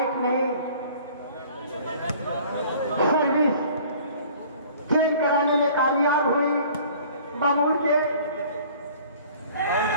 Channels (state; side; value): inverted; both; correlation -0.50